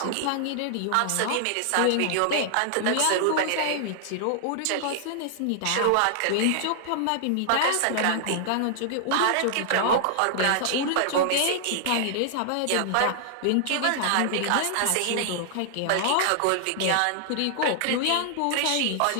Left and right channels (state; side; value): different; both; correlation -0.01